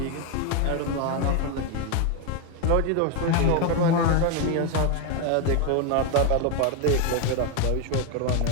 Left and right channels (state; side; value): different; both; correlation 0.01